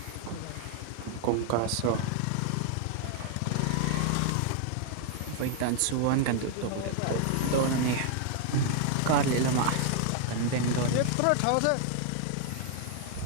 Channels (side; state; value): both; different; correlation 0.00